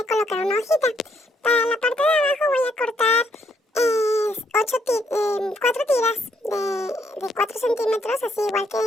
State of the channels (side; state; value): both; normal; correlation 0.72